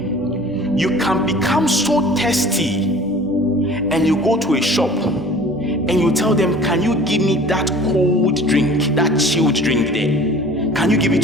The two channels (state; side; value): normal; both; correlation 0.46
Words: You can become so thirsty and you go to a shop and you tell them, can you give me that cold drink, that chilled drink there? Can you give it